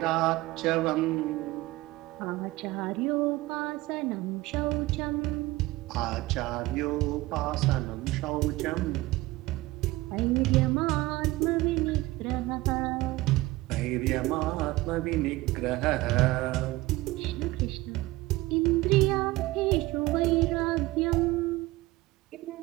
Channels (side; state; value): left; quieter; 19.3 dB